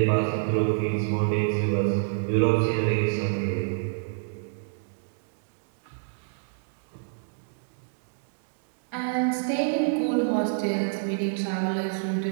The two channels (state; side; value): silent; left; digital silence